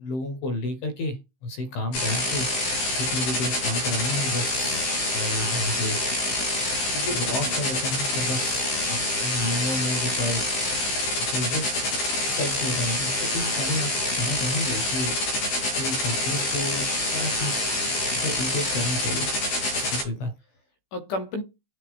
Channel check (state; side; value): late; right; 15 ms